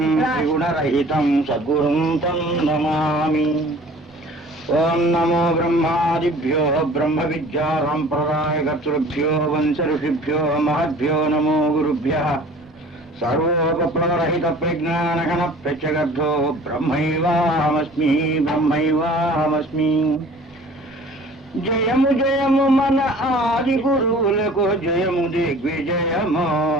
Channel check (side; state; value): both; normal; correlation 0.47